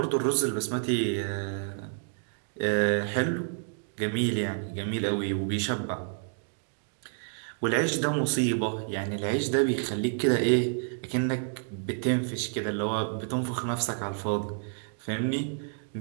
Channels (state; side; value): silent; left; digital silence